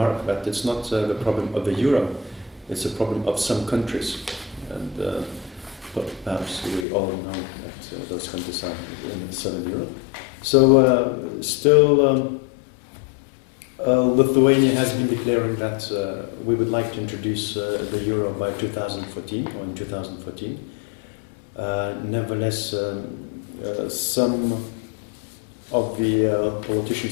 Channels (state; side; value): drops out; right; at 6.9 s